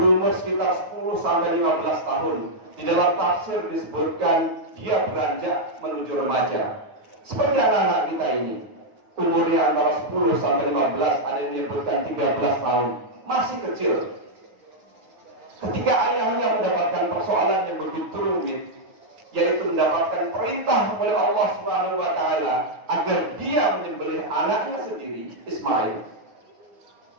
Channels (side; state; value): left; late; 9.4 ms